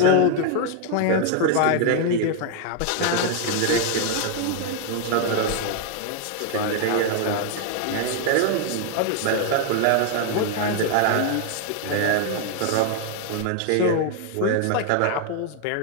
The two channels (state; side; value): different; both; correlation 0.01